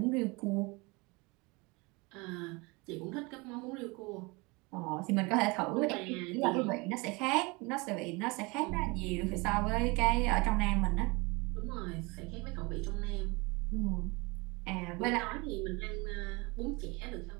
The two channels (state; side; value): quieter; left; 26.5 dB